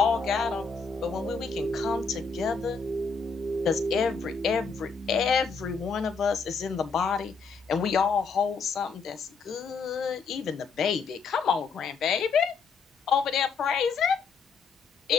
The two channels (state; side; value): quieter; right; 5.1 dB